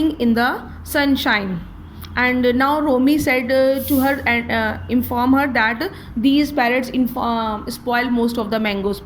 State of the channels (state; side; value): identical; both; correlation 1.00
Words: in the sunshine. And now Romy said to her and inform her that these parrots spoil most of the mangoes.